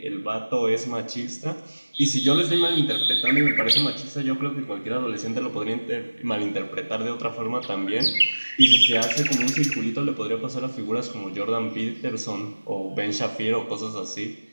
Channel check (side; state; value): both; inverted; correlation -1.00